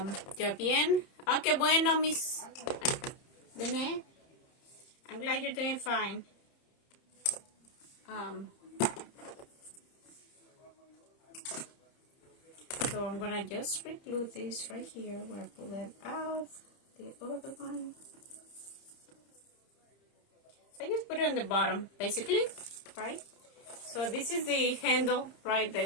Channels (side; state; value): right; late; 30 ms